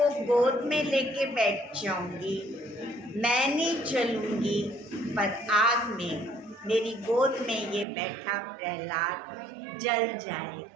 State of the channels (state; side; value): drops out; left; at 7.9 s